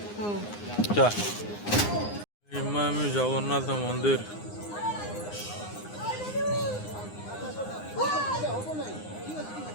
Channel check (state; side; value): late; right; 9.7 ms